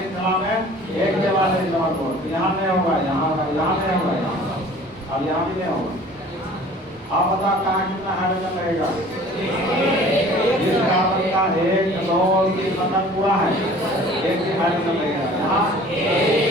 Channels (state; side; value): normal; both; correlation 0.47